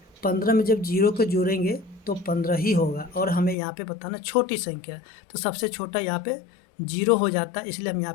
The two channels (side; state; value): right; drops out; at 3.6 s